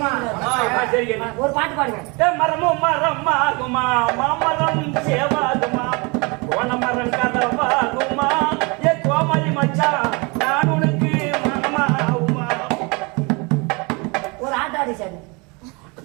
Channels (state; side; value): quieter; left; 29.1 dB